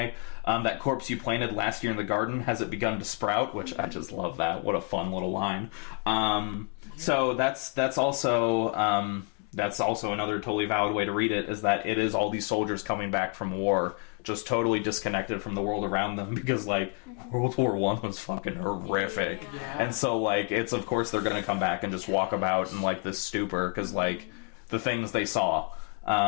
that corpse you planted last year in the garden, has it begun to sprout? Which I just love that. What a fun little line. So that's also another totally valid way to read it, is that it is all these soldiers coming back from war, just totally disconnected from the world around them, because like World War I was fucking horrific. And so like it's, of course they're gonna come back and just walk about in like this stupor, because like the things they saw,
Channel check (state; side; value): quieter; right; 37.0 dB